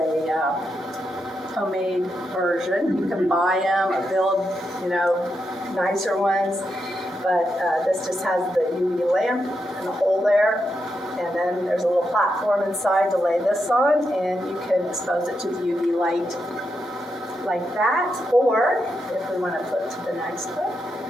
homemade version. You can buy them or build, nicer ones. But this just has the UV lamp and the hole there. And then there's a little platform inside to lay this on, and you can expose it to the UV light like that. Or, if we want to flip to the next one,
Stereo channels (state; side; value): normal; both; correlation 0.84